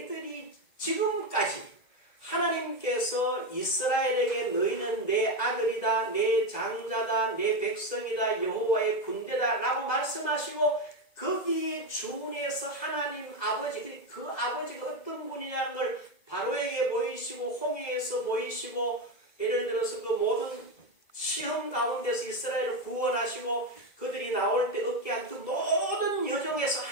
지금까지 하나님께서 이스라엘에게 너희는 내 아들이다, 내 장자다, 내 백성이다, 여호와의 군대다 라고 말씀하시고 거기에 준해서 하나님 아버지, 그 아버지가 어떤 분이냐는 걸 바로에게 보이시고 홍해에서 보이시고 예를 들어서 그 모든 시험 가운데서 이스라엘을 구원하시고 그들이 나올 때 얻게 한 그 모든 여정에서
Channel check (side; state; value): right; late; 2.0 ms